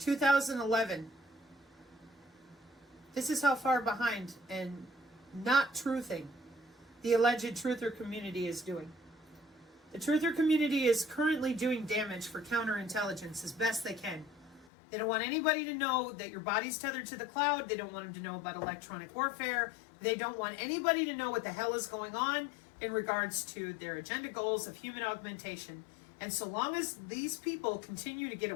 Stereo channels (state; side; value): drops out; right; at 14.7 s